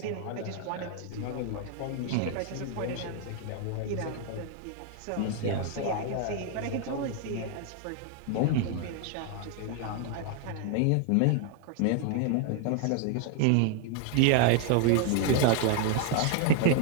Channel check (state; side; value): different; both; correlation 0.00